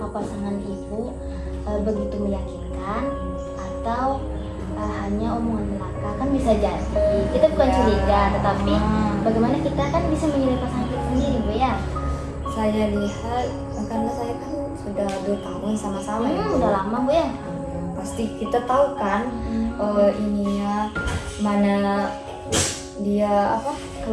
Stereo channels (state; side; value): identical; both; correlation 1.00